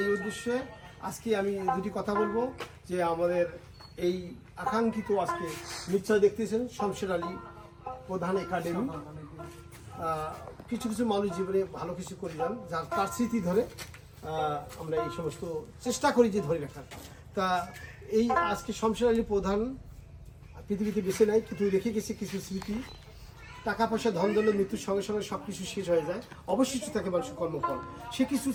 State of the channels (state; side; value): identical; both; correlation 1.00